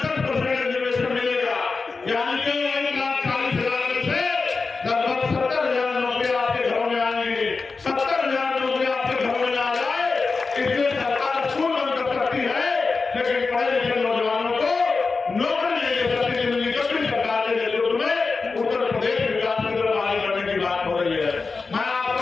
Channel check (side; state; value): right; quieter; 4.3 dB